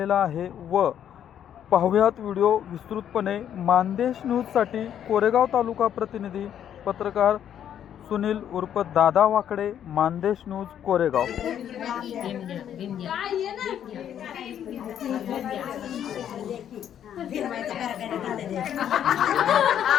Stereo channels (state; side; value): quieter; right; 9.8 dB